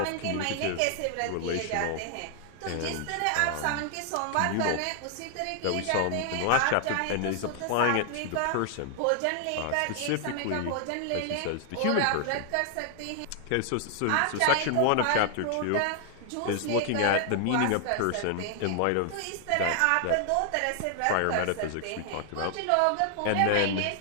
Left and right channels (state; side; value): different; both; correlation 0.00